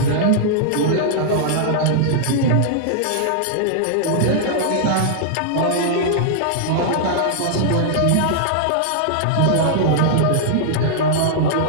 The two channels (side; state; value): both; different; correlation -0.01